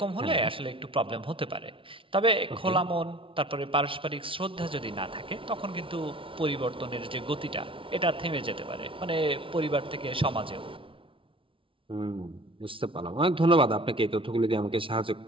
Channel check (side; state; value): left; late; 0.25 ms